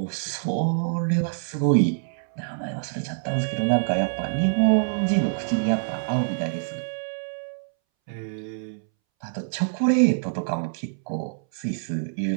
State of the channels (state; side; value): silent; left; 61 dB below the other